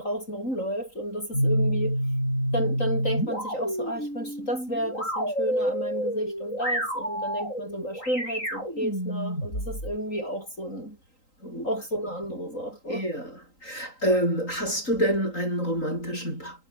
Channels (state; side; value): late; right; 3.8 ms